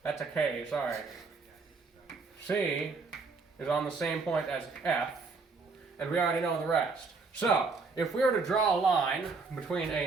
that's a K, sorry, C is on the same point as F, and we already know the rest. So, if we were to draw a line between A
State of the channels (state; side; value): quieter; left; 4.3 dB